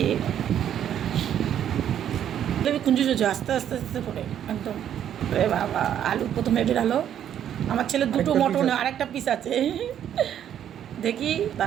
কুঞ্জু চুজু আস্তে আস্তে আস্তে করে একদম। এ বাবা, আলু প্রথমে বেরালো। আমার ছেলে দুটো মটন, আর একটা পিস আছে দেখি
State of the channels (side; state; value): left; quieter; 10.0 dB